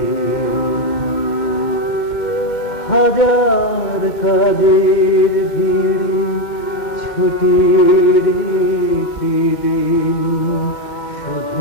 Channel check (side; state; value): right; late; 2.1 ms